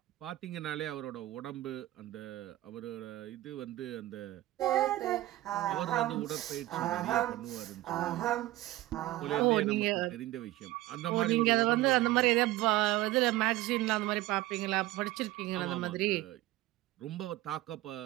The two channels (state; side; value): quieter; left; 16.7 dB